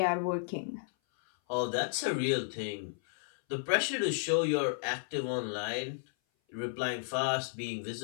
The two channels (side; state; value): right; silent; 56 dB below the other